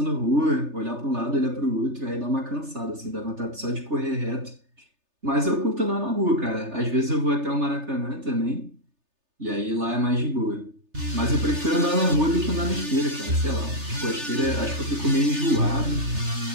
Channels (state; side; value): late; left; 3.3 ms